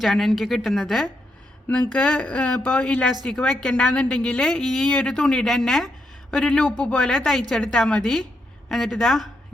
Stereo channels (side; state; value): both; normal; correlation 0.80